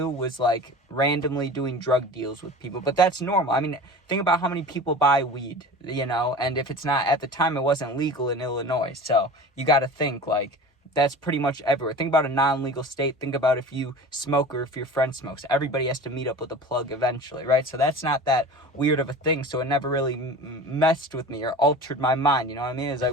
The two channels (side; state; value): both; normal; correlation 0.36